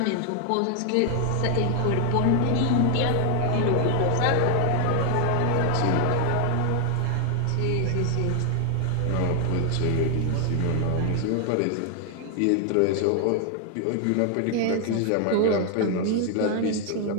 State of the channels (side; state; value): both; different; correlation 0.00